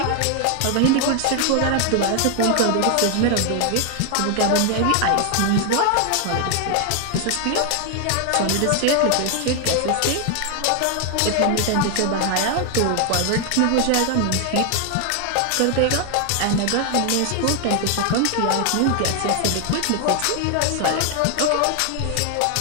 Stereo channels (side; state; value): both; different; correlation 0.00